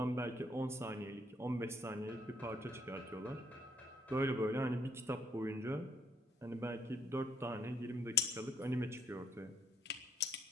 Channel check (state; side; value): normal; both; correlation 0.67